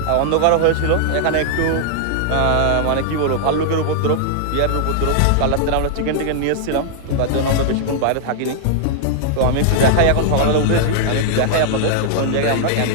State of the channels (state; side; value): different; both; correlation -0.01